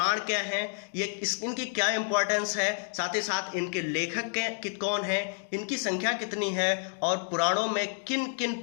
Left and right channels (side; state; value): right; silent; digital silence